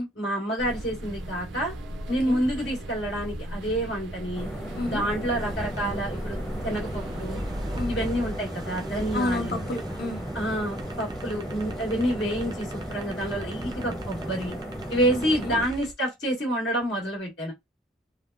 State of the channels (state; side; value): normal; both; correlation 0.59